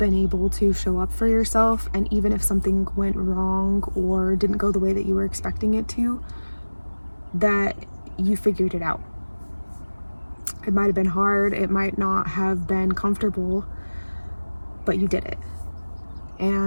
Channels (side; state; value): both; inverted; correlation -1.00